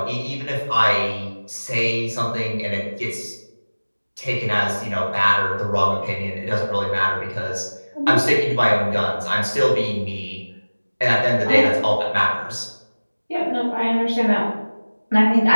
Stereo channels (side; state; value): both; inverted; correlation -1.00